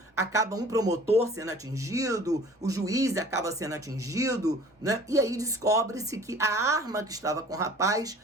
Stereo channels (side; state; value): both; normal; correlation 0.47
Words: acaba um promotor sendo atingido, o juiz acaba sendo atingido, né? E aí descobre-se que a arma que estava com o rapaz